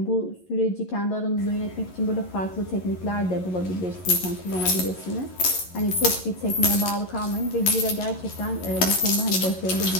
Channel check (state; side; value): late; right; 11 ms